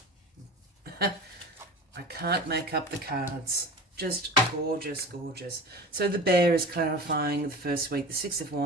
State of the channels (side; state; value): both; normal; correlation 0.34